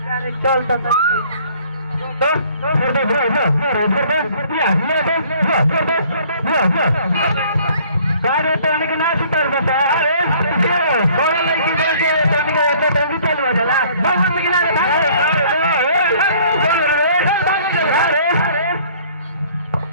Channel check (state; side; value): inverted; both; correlation -0.56